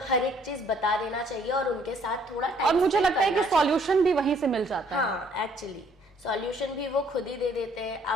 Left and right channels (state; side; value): normal; both; correlation 0.63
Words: हर एक चीज बता देना चाहिए और उनके साथ थोड़ा टाइम, और मुझे लगता है कि सॉल्यूशन भी वहीं से मिल जाता है। हाँ, एक्चुअली सॉल्यूशन भी वो खुद ही दे देते हैं।